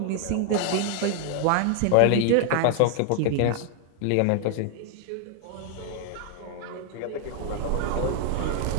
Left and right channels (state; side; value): different; both; correlation 0.00